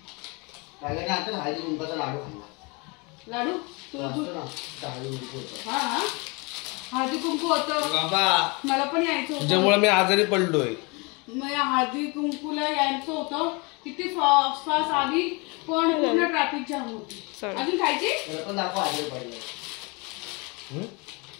टायगरने आता हळदी कुंकाचा लाडू खाल्ला. लाडू तू असतो ना, हळदी कुंकू होतं. हा हा हळदी कुंकू होतं. बाबा मला पण यायचं होतं. तुझ्यामुळे मी आजारी पडलोय. मला हळदी कुंकूला यायचं होतं. किती फास्ट आली पण पूर्ण ट्रॅफिक जाम होती. Sorry. अजून खायची. त्याला पण दाखव हळदी पडलं.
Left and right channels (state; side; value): quieter; right; 29.1 dB